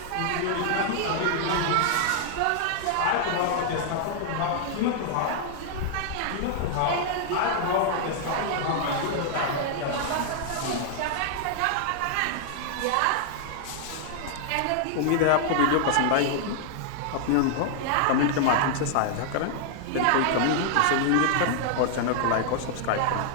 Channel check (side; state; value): both; different; correlation -0.01